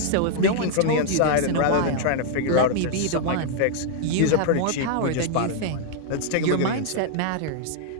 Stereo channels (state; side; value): different; both; correlation -0.01